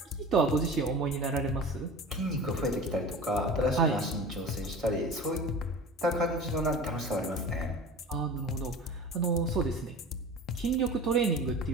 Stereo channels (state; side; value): normal; both; correlation 0.36